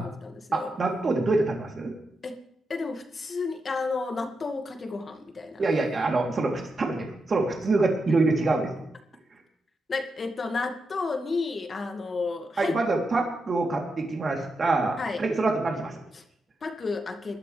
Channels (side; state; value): both; normal; correlation 0.86